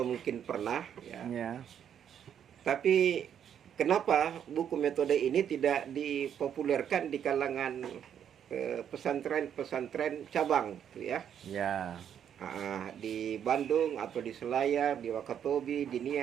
mungkin pernah, ya. Ya. Tapi kenapa buku metode ini tidak dipopulerkan di kalangan pesantren-pesantren cabang, gitu ya? Ya. Di Bandung atau di Selayar, di Wakatobi, di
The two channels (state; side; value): quieter; left; 8.9 dB